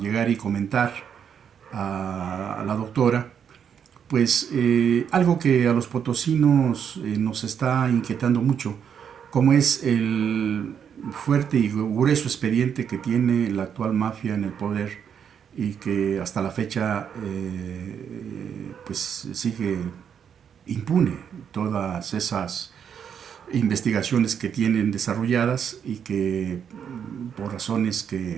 y comentar a la doctora, pues algo que a los potosinos nos está inquietando mucho, como es el fuerte y grueso expediente que tiene la actual mafia en el poder y que hasta la fecha pues sigue impune todas esas investigaciones que tienen desarrolladas y que por razones que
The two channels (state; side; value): quieter; left; 7.9 dB